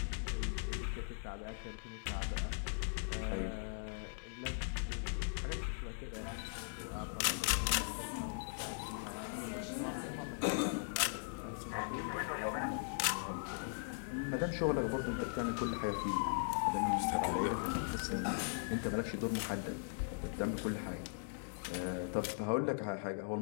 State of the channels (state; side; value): silent; right; digital silence